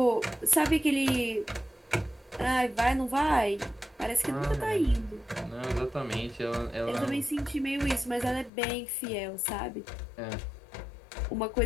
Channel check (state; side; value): drops out; right; at 8.5 s